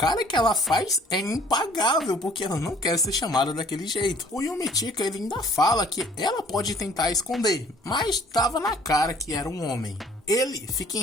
que ela faz é impagável, porque ela não quer ser chamada daquele jeito. O Yomitika ele ainda fala que ela pode tentar esconder, mas estava na cara que era um homem. Ele fica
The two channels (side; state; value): both; normal; correlation 0.56